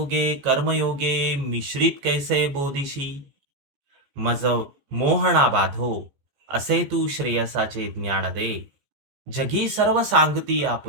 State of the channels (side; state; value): left; late; 14 ms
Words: कर्मयोगे मिश्रित कैसे बोधिशी? मज मोहना बाधो, असे तू श्रेयसाचे ज्ञान दे. जगी सर्व सांगती